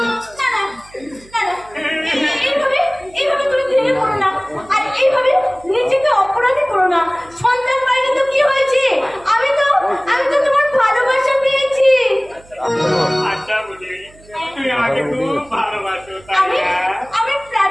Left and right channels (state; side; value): noise; right; hum, 25 dB below the sound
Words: এইভাবে তুমি ভেঙে পড়ো না, আর এইভাবে নিজেকে অপরাধী করো না। আমাকে খুব ভালোবাসো তাই আমি না? আমি